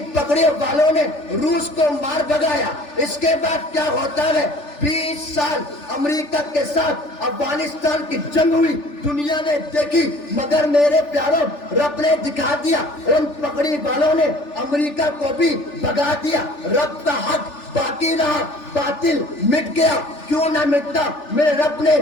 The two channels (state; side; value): late; right; 3.4 ms